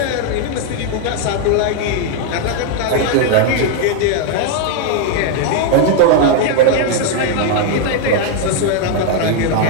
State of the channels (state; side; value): different; both; correlation 0.00